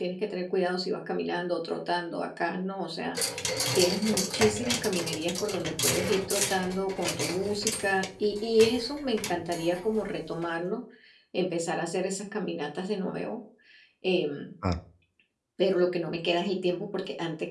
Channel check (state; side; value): identical; both; correlation 1.00